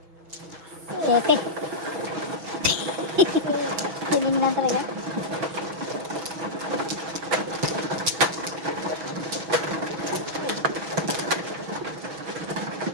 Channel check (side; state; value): left; late; 6.2 ms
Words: Sete. Piling lang talaga.